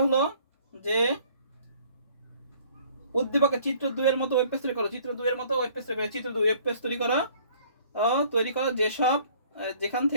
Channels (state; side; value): inverted; both; correlation -0.56